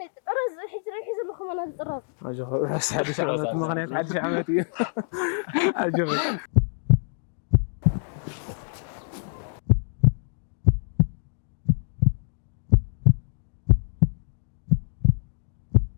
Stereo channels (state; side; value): silent; right; digital silence